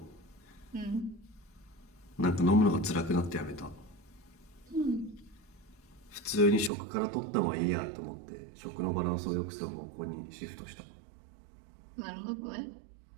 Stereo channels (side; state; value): left; drops out; at 6.7 s